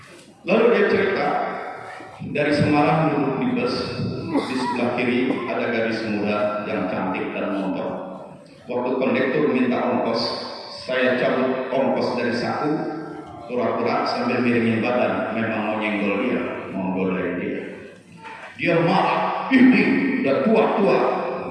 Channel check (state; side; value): identical; both; correlation 1.00